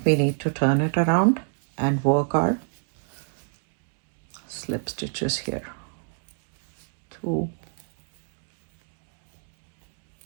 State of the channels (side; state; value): left; silent; digital silence